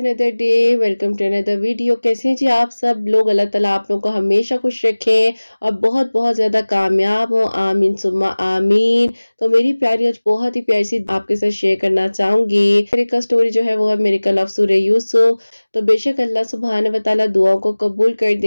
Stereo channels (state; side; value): inverted; both; correlation -1.00